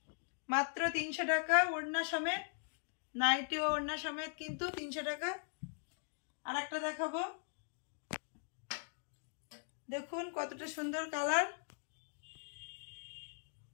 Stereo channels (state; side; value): silent; right; digital silence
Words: মাত্র 300 টাকা ওড়না সমেত। नाइटी और ओढ़ना समेत किन्तु 300 टाका। और एक देखाबो, देखुन कतटा सुंदर कलर।